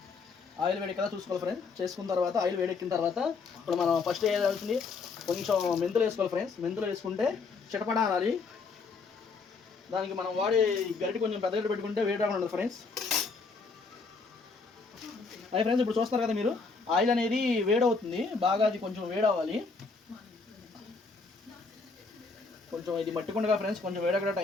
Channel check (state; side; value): quieter; right; 4.5 dB